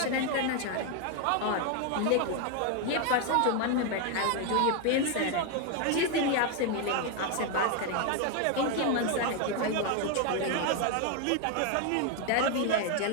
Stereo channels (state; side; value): different; both; correlation 0.01